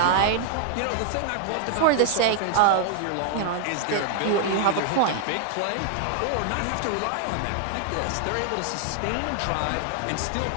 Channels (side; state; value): both; different; correlation -0.01